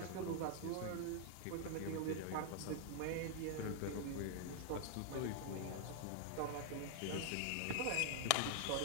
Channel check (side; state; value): both; different; correlation 0.00